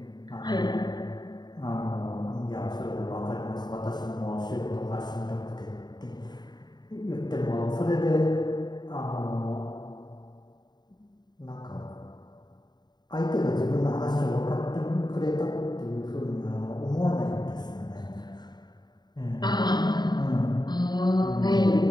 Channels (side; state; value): right; late; 0.20 ms